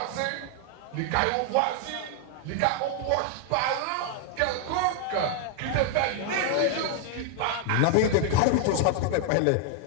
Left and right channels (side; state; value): both; different; correlation 0.00